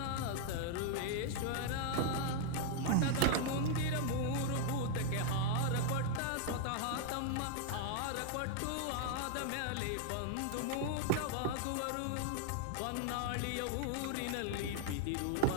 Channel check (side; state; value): both; different; correlation 0.00